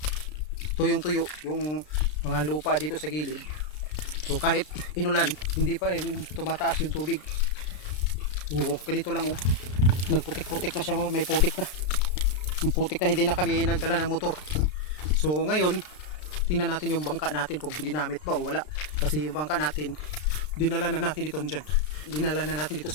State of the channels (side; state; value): right; late; 33 ms